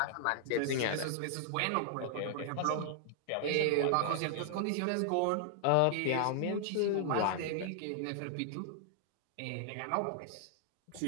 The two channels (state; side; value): different; both; correlation -0.01